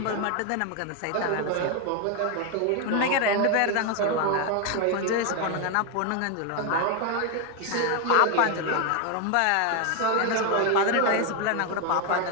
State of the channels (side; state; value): both; different; correlation 0.01